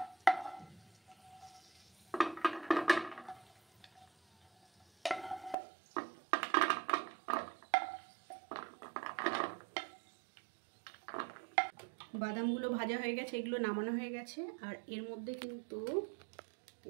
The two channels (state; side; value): drops out; left; at 5.6 s